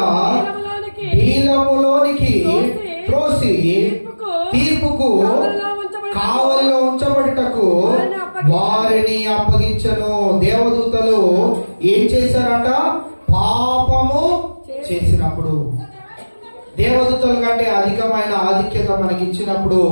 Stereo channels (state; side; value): inverted; both; correlation -1.00